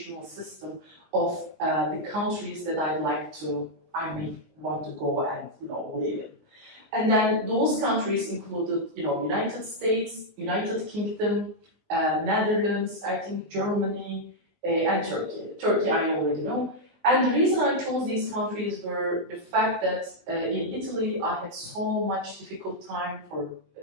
system of the countries that I may want to go and live in. And then those countries included, United States, United Kingdom, Netherlands, I think Germany, and Turkey. Turkey I already know. And the reason I chose these countries were the fact that in Italy I had so much difficult time with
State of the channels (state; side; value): late; left; 19 ms